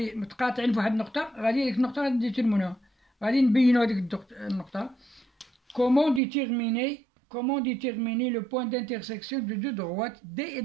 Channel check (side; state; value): left; drops out; at 6.2 s